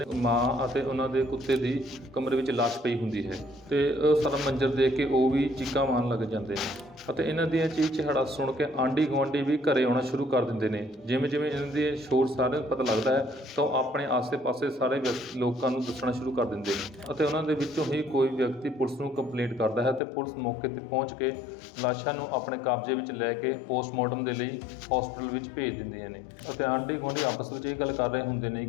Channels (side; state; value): right; drops out; at 20.0 s